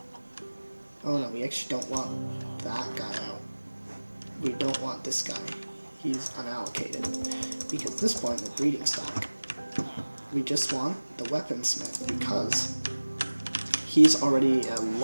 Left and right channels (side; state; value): both; inverted; correlation -1.00